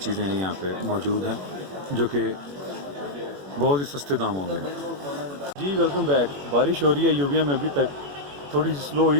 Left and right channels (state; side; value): late; left; 21 ms